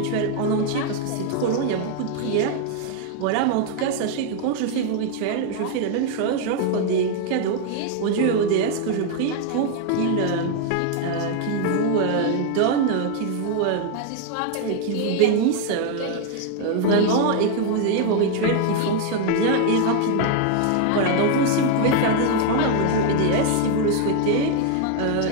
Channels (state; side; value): different; both; correlation 0.00